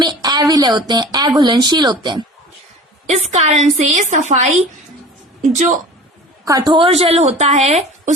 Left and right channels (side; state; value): both; normal; correlation 0.40